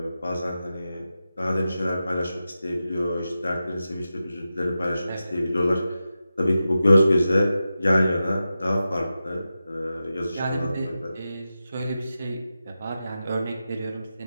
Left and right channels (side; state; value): both; inverted; correlation -0.92